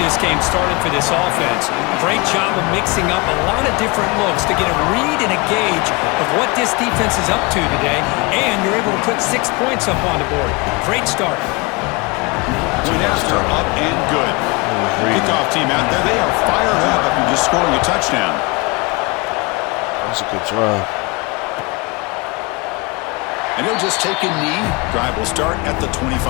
game started for this offense. Great job of mixing up a lot of different looks to get a read and a gauge of what this defense is up to today, and you're able to put 6 points up on the board. Great start. Point after up and good. Kickoff team out there, they are fired up after just scoring a touchdown. That's a good drive. And he'll just take a knee. Drive will start at the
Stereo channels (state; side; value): quieter; right; 26.9 dB